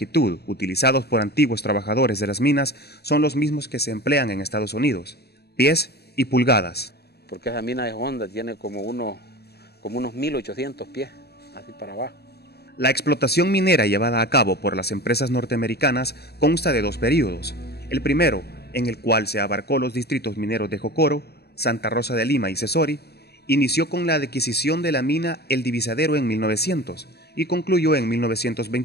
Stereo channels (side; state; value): right; late; 0.47 ms